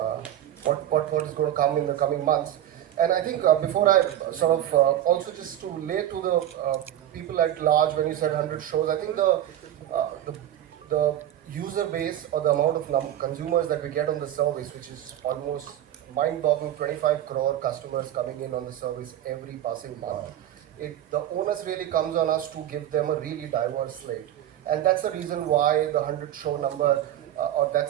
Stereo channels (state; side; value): quieter; left; 12.0 dB